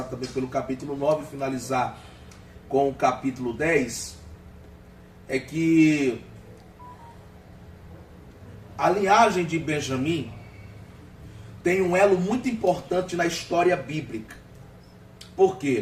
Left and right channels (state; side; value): identical; both; correlation 1.00